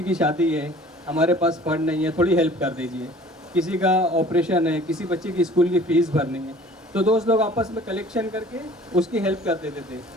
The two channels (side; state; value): both; normal; correlation 0.49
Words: की शादी है, हमारे पास फंड नहीं है, थोड़ी हेल्प कर दीजिए, किसी का ऑपरेशन है, किसी बच्चे की स्कूल की फ़ीस भरनी है, तो दोस्त लोग आपस में कलेक्शन करके उसकी हेल्प कर देते थे।